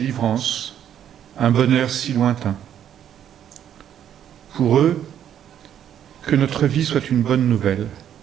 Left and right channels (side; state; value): left; quieter; 9.9 dB